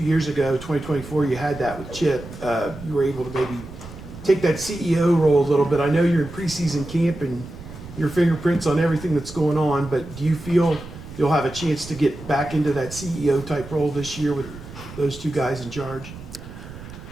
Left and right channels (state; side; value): noise; right; rumble, 14 dB below the sound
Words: years ago, 2024, you had that with Chip. You were able to maybe take that CEO role a little bit. I know you're in preseason camp and your fingerprints on everything that's going on, but do you feel you'll have a chance to get back into that CEO type role this year with those two guys in charge?